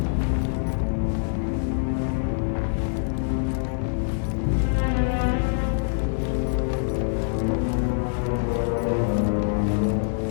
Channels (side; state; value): right; silent; 62 dB below the other